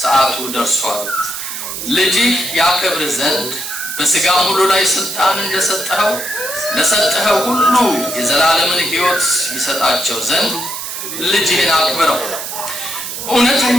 ሰዓቱ ደርሷል። ልጅህ ያከብር ዘንድ በሥጋም ሁሉ ላይ ስልጣን እንደሰጠኸው ለሰጠኸው ሁሉ የዘላለምን ሕይወት ይሰጣቸው ዘንድ ልጅህን አክብረው።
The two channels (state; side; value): noise; right; hiss, 7 dB below the sound